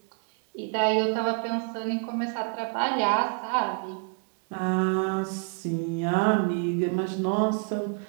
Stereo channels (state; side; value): quieter; left; 38.7 dB